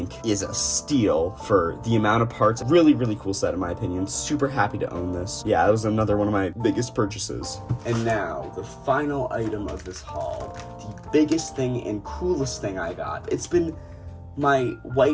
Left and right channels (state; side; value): identical; both; correlation 1.00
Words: is a steal for the amount of parts. Really, really cool set in my opinion. Super happy to own this. Yeah, that was another one of my biggest purchases. And now, the final item of this haul. The biggest thing and coolest thing I got. It's been my